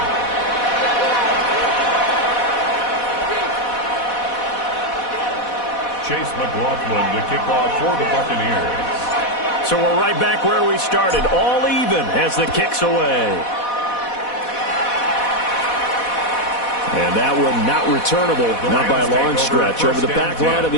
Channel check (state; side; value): late; right; 4.1 ms